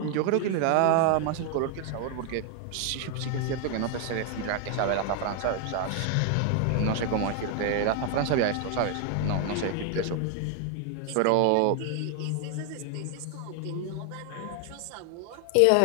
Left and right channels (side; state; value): both; different; correlation 0.00